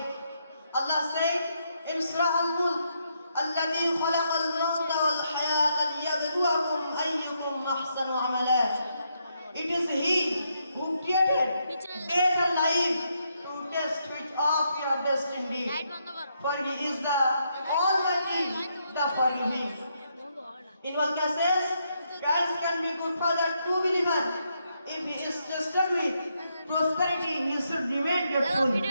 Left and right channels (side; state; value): both; inverted; correlation -0.78